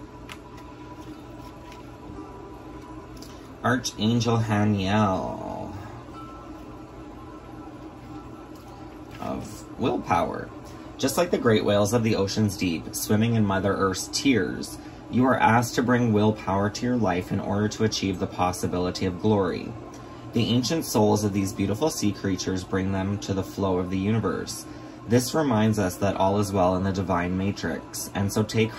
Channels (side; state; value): both; identical; correlation 1.00